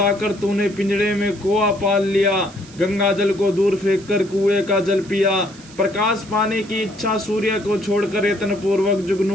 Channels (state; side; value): noise; right; hiss, 22 dB below the sound